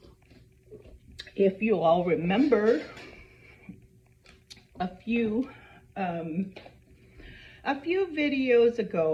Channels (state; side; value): identical; both; correlation 1.00